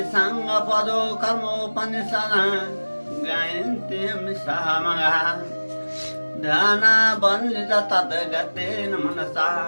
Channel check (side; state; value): both; inverted; correlation -1.00